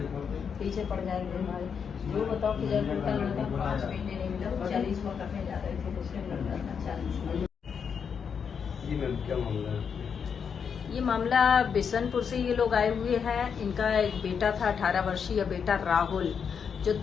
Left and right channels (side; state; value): right; quieter; 6.7 dB